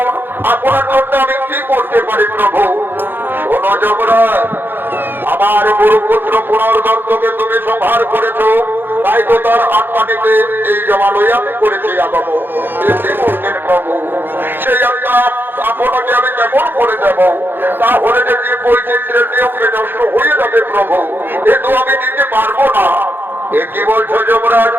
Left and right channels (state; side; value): late; left; 0.099 ms